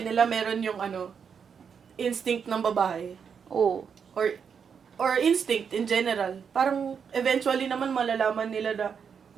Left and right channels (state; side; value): quieter; left; 6.8 dB